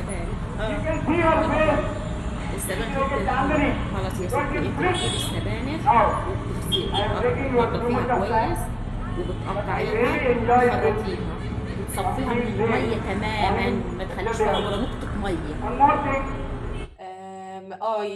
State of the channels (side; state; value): both; identical; correlation 1.00